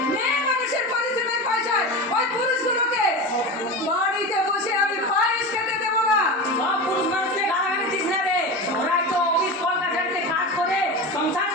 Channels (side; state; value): both; normal; correlation 0.25